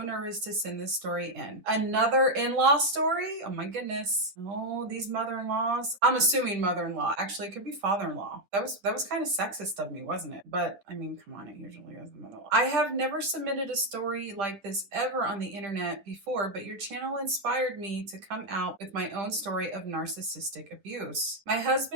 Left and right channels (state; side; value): late; left; 10 ms